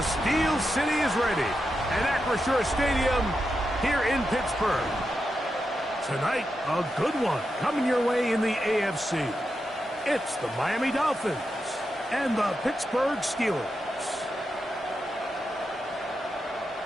Steel City is ready at Acrisure Stadium here in Pittsburgh. Tonight, a good one coming your way in the AFC. It's the Miami Dolphins and the Pittsburgh Steelers.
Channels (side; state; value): both; normal; correlation 0.87